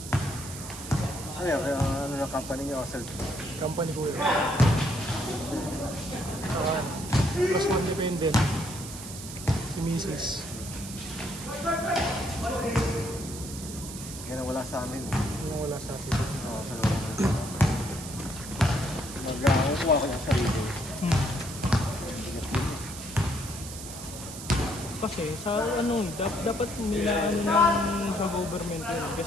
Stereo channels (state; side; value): noise; right; hiss, 11 dB below the sound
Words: Ano yan? Kaya ano ng company niya o self? Company ko yun. Plus one dependent. Si Mrs. Yan ang wala sa amin. Yung wala sa atin. Oo, sa loob. Mag-kuha ko ng sarili. Kasi sa ano, dapat may ano ng sa government yun.